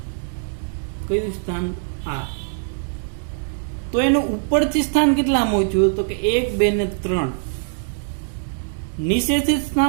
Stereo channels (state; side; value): silent; left; digital silence